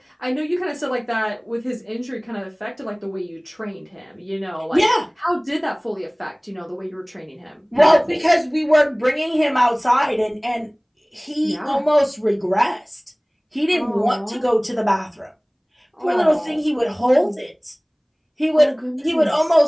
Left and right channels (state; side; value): identical; both; correlation 1.00